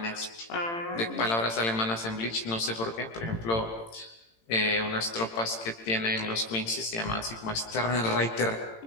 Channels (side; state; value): right; late; 18 ms